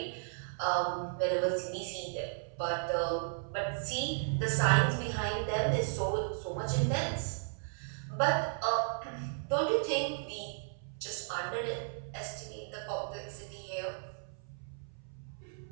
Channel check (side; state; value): left; silent; 55 dB below the other